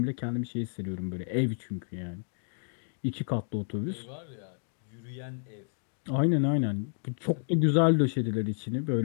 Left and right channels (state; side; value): silent; right; digital silence